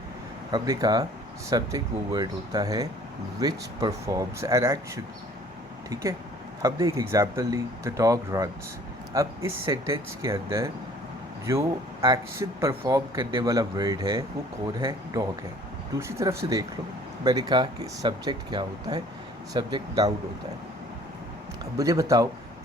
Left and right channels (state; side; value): normal; both; correlation 0.53